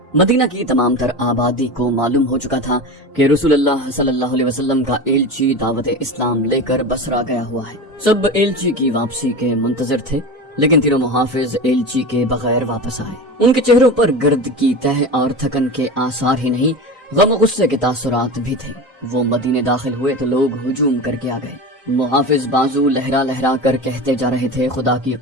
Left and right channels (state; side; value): normal; both; correlation 0.27